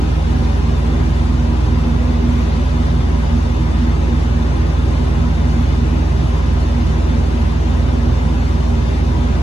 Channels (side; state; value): both; normal; correlation 0.91